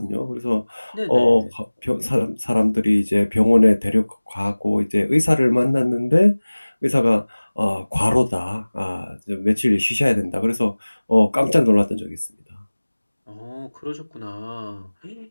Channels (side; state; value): both; inverted; correlation -1.00